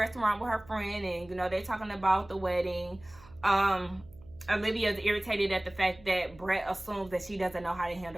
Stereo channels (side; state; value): right; noise; hum, 23 dB below the sound